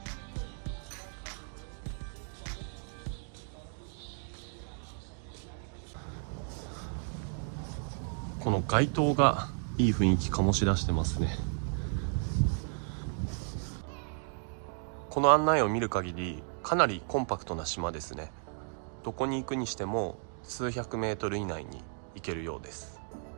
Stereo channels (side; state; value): left; silent; 55 dB below the other